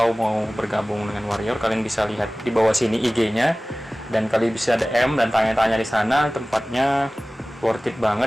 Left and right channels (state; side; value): normal; both; correlation 0.98